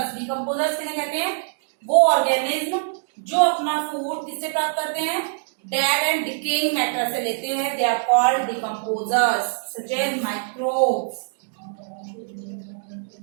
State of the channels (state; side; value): silent; left; digital silence